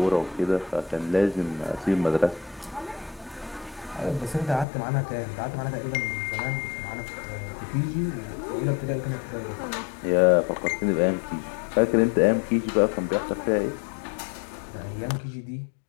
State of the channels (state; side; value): drops out; right; at 4.7 s